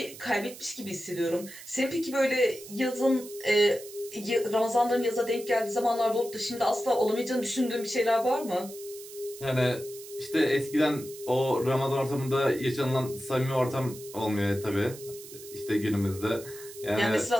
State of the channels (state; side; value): noise; right; hiss, 16 dB below the sound